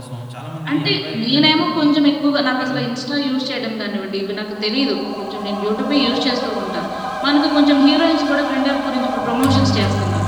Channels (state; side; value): identical; both; correlation 1.00